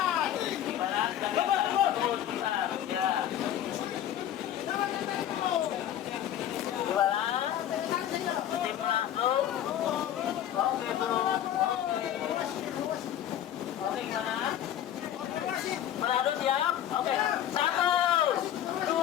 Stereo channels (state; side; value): quieter; right; 11.2 dB